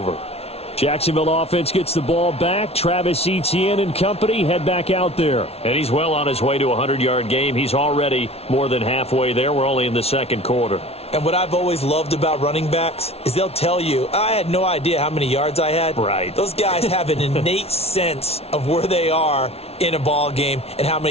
Jacksonville offense gets the ball back. Travis Etienne and company head back out there. And he's well on his way to a 100-yard game. He's already more than halfway there. We're only in the 2nd quarter. And what I've always loved about running backs is they'll tell you, I had no idea how many yards I had. Right. Those guys have an innate sense of where they are in a ball game and how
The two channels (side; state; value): right; late; 0.30 ms